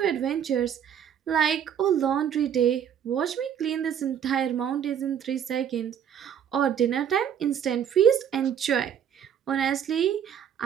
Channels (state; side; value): quieter; left; 8.9 dB